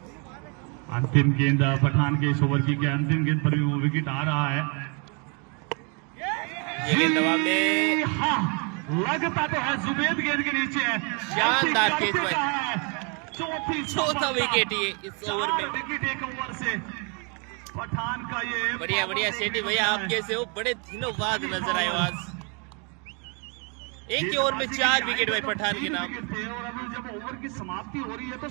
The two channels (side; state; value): left; quieter; 34.7 dB